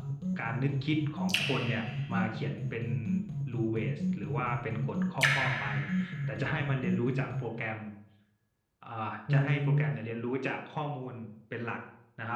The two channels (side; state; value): both; identical; correlation 1.00